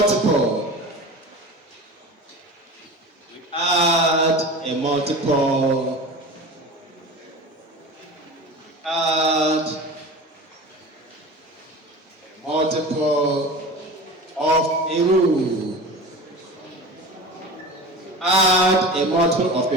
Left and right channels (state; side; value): normal; both; correlation 0.34